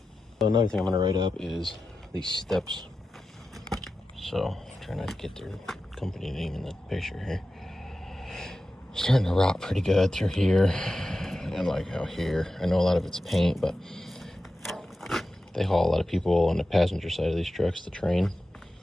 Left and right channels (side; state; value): both; normal; correlation 0.93